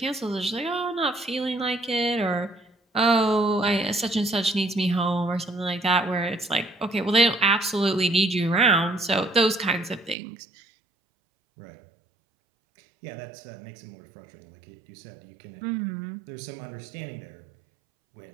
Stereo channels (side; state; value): left; drops out; at 10.2 s